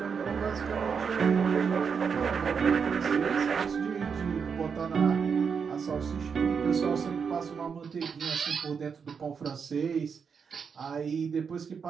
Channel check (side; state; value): left; quieter; 6.2 dB